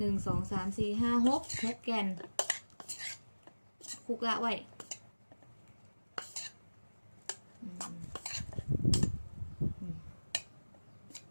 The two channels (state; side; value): inverted; both; correlation -1.00